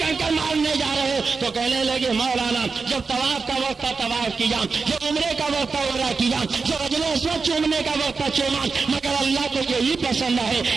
مارنے جا رہے ہو؟ تو کہنے لگے مولانا جب طواف کا وقت تھا طواف کیا، جب عمرے کا وقت تھا عمرہ کیا، جب حجر اسود چومنے کا وقت تھا چوما، مگر اللہ کو یہی پسند ہے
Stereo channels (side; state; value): left; quieter; 4.6 dB